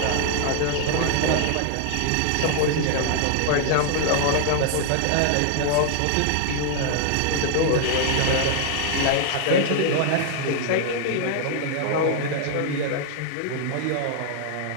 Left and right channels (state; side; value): different; both; correlation 0.00